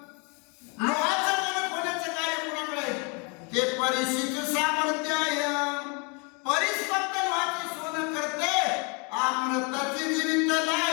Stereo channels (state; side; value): quieter; right; 33.3 dB